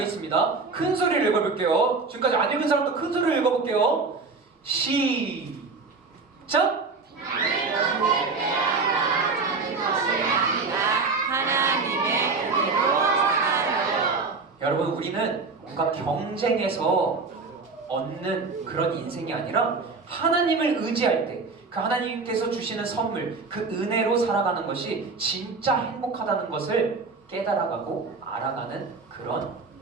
있습니다. 큰 소리를 읽어볼게요. 지금까지 안 읽은 사람도 큰 소리를 읽어볼게요. 시작! 하나님의 은혜로 살아요. 여러분, 우리는 뭔가 경쟁해서 얻는 그런 인생이 아니라 하나님을 의지할 때 그 하나님께서 주시는 선물, 그 은혜로 살아가는 것이 진짜 행복하다는 것을 깨달아가고 알아가는 그런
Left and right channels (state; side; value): quieter; left; 4.2 dB